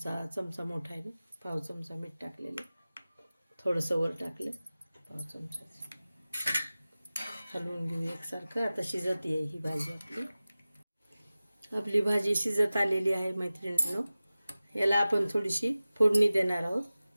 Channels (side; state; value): both; inverted; correlation -0.97